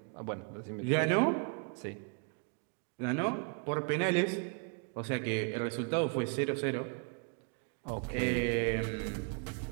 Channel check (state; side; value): quieter; left; 35.4 dB